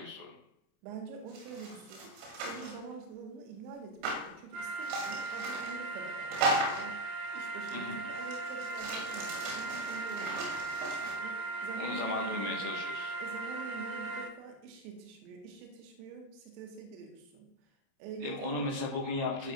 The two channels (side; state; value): left; late; 28 ms